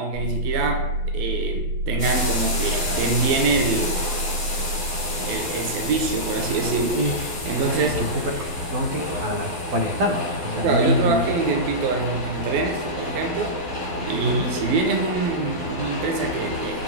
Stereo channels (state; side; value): late; left; 12 ms